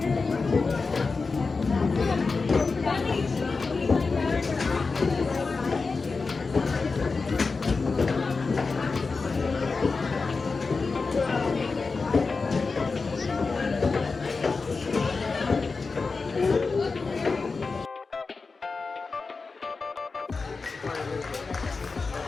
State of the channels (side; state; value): right; quieter; 4.3 dB